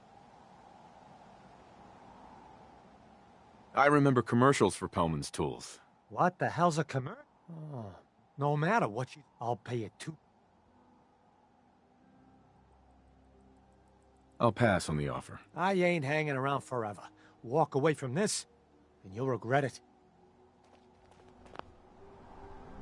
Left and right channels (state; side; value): identical; both; correlation 1.00